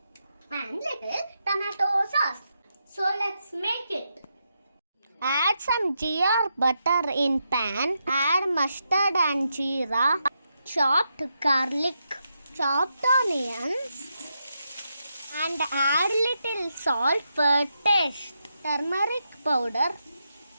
and little tomato sauce. So let's make it. Add some ghee or butter in pan. Add mustard and jeera, chopped garlic, chopped onions, and add little salt for taste. Turmeric powder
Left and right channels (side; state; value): both; inverted; correlation -0.84